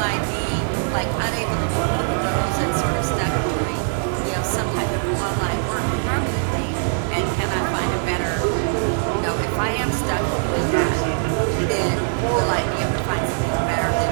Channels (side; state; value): left; silent; digital silence